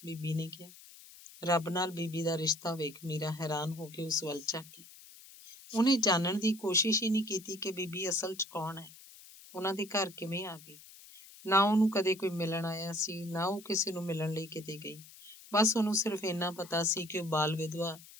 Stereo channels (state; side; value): noise; left; hiss, 20 dB below the sound